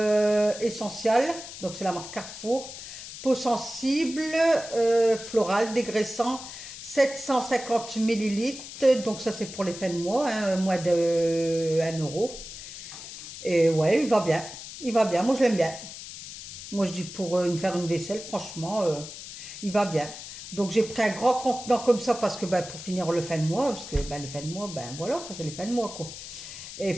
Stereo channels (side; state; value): left; noise; hiss, 12 dB below the sound